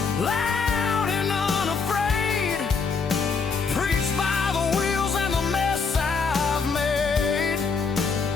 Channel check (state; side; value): quieter; right; 5.1 dB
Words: loud and unafraid, preached by the wheels and the mess I've made.